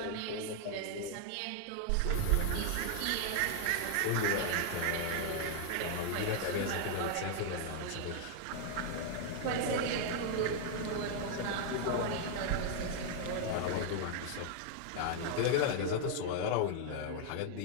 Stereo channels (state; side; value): different; both; correlation 0.00